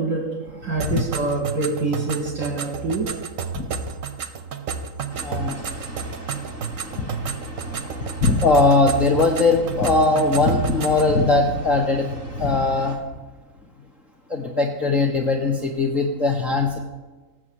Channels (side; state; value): left; late; 3.8 ms